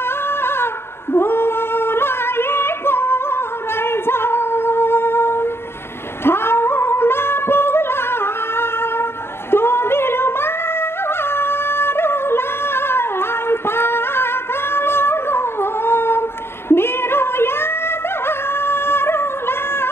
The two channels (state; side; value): late; right; 0.12 ms